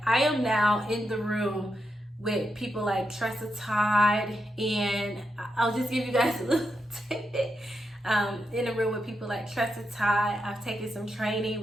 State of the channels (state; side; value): normal; both; correlation 0.85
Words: I am now in the room with people like Tressa Todd, and I'll just give you guys a little tidbit. In a room with people like Tressa Todd. I've taken some training